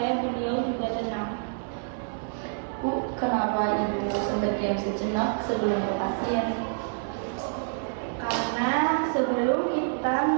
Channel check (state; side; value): silent; left; 60 dB below the other